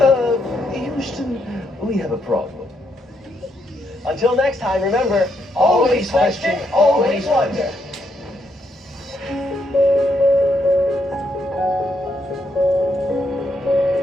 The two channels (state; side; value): normal; both; correlation 0.77